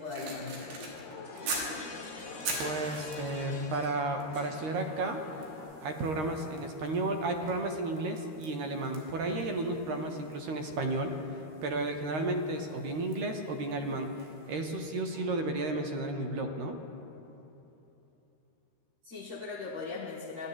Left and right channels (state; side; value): late; left; 13 ms